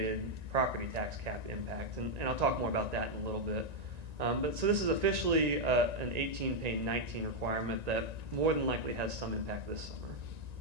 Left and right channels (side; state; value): left; late; 1.9 ms